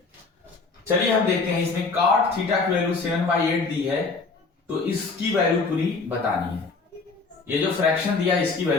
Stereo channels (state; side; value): quieter; right; 4.2 dB